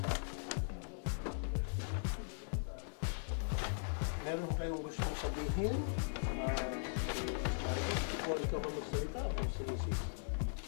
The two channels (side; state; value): right; silent; digital silence